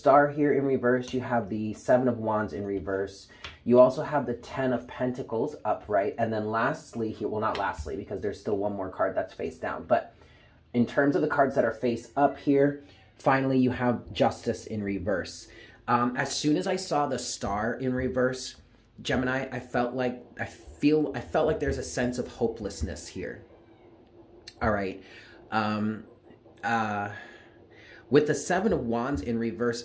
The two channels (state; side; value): identical; both; correlation 1.00